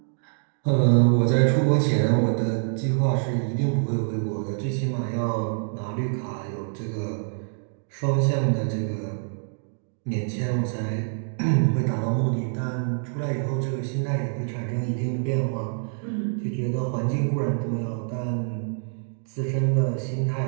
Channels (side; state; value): left; silent; digital silence